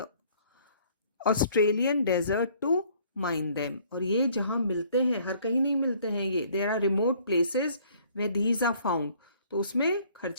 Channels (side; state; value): both; inverted; correlation -0.59